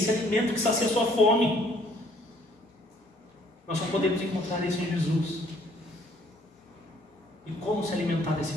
alimento que sacia a sua fome. Nós só podemos encontrar isso em Jesus. E como se alimentar desse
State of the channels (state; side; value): normal; both; correlation 0.62